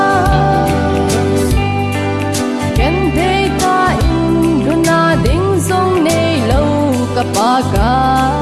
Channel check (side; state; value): both; identical; correlation 1.00